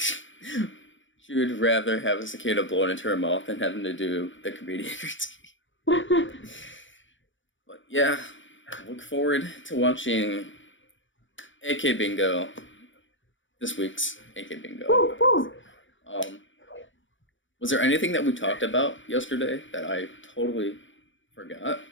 She would rather have a cicada blown into her mouth than having to do the comedian routine. But yeah, look forward to watching AKBingo. This week's AKBingo. Was there anything that we talked about yesterday that I totally forgot?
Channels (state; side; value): late; right; 0.56 ms